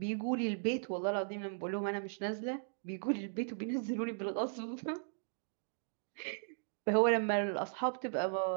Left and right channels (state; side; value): silent; left; digital silence